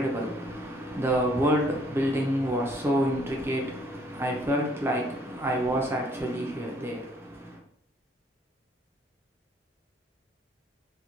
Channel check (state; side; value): normal; both; correlation 0.63